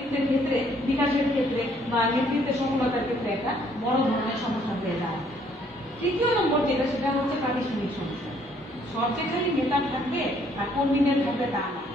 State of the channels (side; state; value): both; normal; correlation 0.65